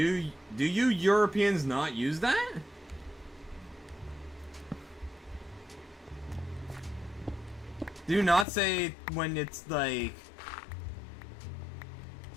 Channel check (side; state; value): right; drops out; at 8.5 s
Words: you Europeans not use that? Do you not say when it's like